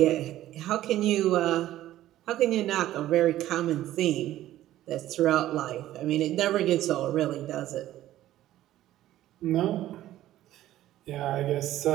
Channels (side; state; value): left; quieter; 13.9 dB